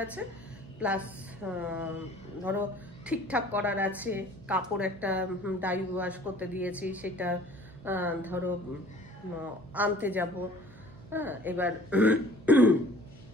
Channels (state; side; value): noise; right; hum, 21 dB below the sound